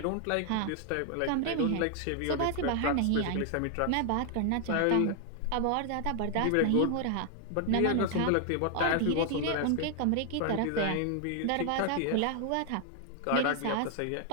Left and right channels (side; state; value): both; different; correlation 0.00